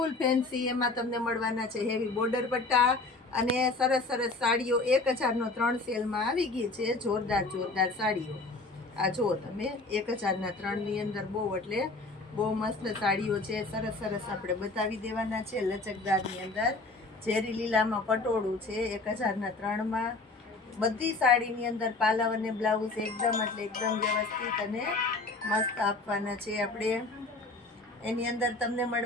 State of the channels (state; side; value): quieter; right; 3.4 dB